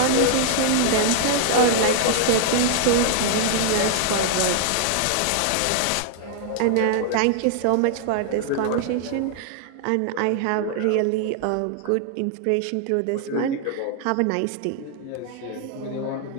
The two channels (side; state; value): both; different; correlation 0.00